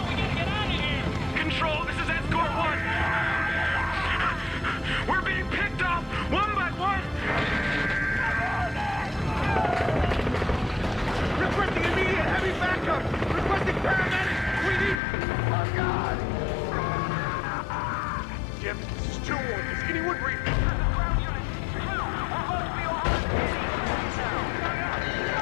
We gotta get out of here. Control, this is Escort 1. We're being picked off one by one. Requesting immediate heavy backup! Requesting paramedics! We need... Oh, God! Jim, this is 2-1. Is anyone breathing?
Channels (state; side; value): drops out; right; at 15.0 s